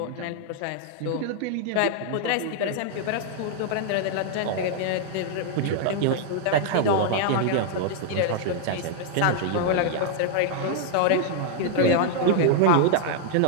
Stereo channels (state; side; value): different; both; correlation 0.00